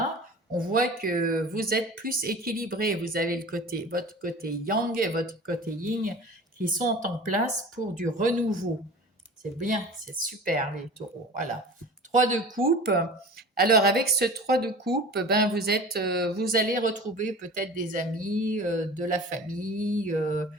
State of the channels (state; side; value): normal; both; correlation 0.39